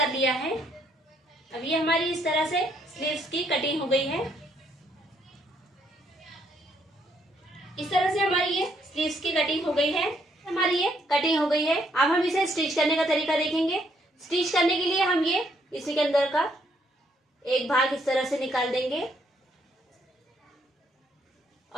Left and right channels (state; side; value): normal; both; correlation 0.71